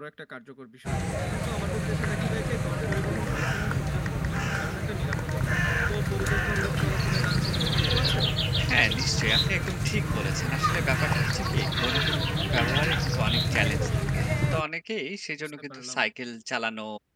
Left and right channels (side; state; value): both; identical; correlation 1.00